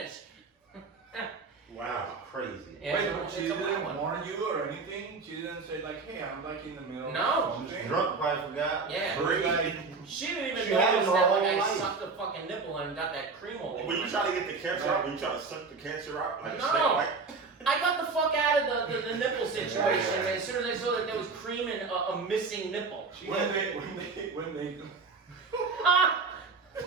Wow. Crazy. Yeah, Wait, it's a- but she it's a weird didn't one. warn you or anything? She didn't say like, hey, I'm like in the middle No. of She was something? drunk, probably forgot. Yeah. Great. She didn't even She notice had it her that like whole I life. sucked a fucking nipple and got that cream all over. When you my try to get the cancer out, when you try to suck the cancer out, like a No. snake bite, I got the fuck out of the nipple situation as soon as I saw that there was cream and a missing nipple. When they Wow.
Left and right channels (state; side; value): quieter; left; 4.4 dB